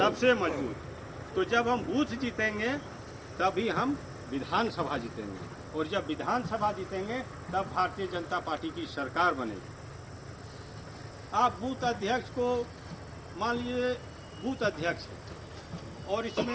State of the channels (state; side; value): identical; both; correlation 1.00